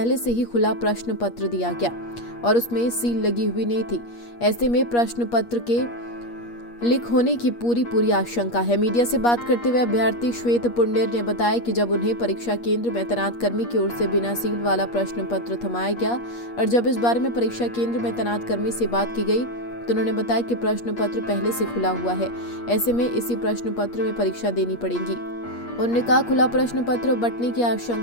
से ही खुला प्रश्न पत्र दिया गया और उसमें सील लगी हुई नहीं थी। ऐसे में प्रश्न पत्र के लीक होने की पूरी आशंका है। मीडिया से बात करते हुए अभ्यर्थी श्वेत पुंडेर ने बताया कि जब उन्हें परीक्षा केंद्र में तैनात कर्मी की ओर से बिना सील वाला प्रश्न पत्र थमाया गया और जब इस बारे में परीक्षा केंद्र में तैनात कर्मी से बात की गई तो उन्होंने बताया कि प्रश्न पत्र पहले से खुला हुआ है, ऐसे में इसी प्रश्न पत्र में परीक्षा देनी पड़ेगी। उन्होंने कहा खुला प्रश्न पत्र बंटने की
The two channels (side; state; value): right; late; 8.5 ms